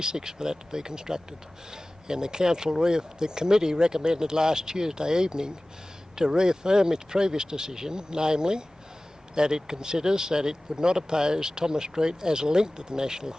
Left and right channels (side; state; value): both; normal; correlation 0.98